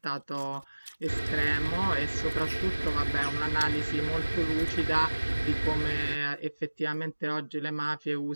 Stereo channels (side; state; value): both; inverted; correlation -1.00